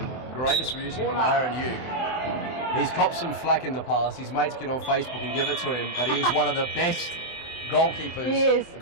from Aaron Hume. He's copped some flack in the past. His mates get on Facebook and give it to him, but he is one of the best goalkeepers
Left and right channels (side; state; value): right; late; 23 ms